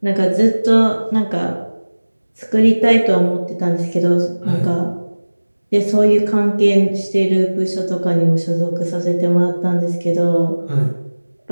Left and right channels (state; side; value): inverted; both; correlation -1.00